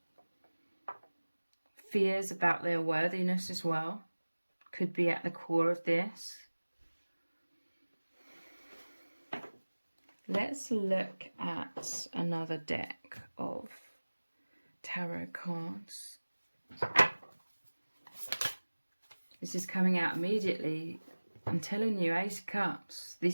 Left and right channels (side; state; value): both; inverted; correlation -1.00